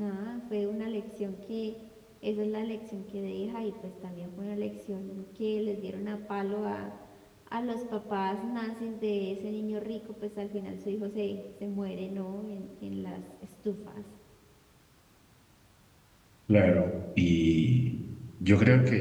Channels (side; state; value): both; identical; correlation 1.00